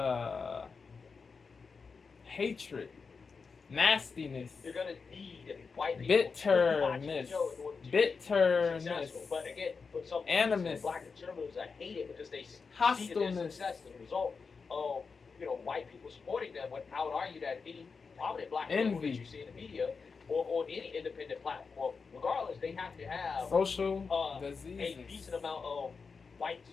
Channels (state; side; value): quieter; right; 5.0 dB